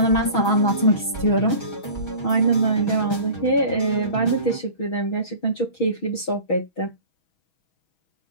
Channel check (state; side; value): late; right; 6.2 ms